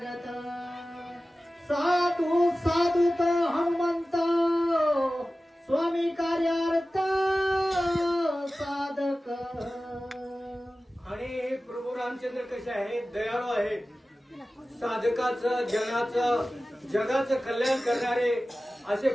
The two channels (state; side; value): normal; both; correlation 0.96